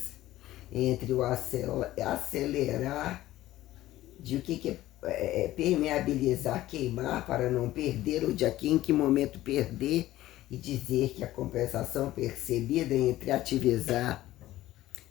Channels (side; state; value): right; quieter; 15.3 dB